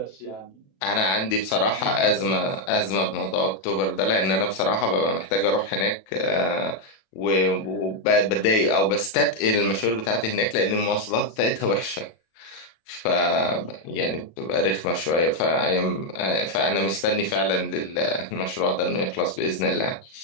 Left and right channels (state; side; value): late; right; 37 ms